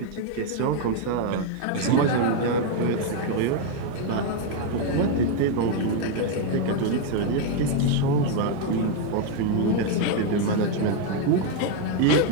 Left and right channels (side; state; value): both; different; correlation 0.01